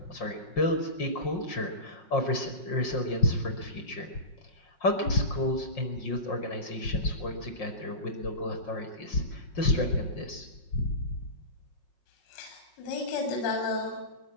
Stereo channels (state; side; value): late; right; 5.6 ms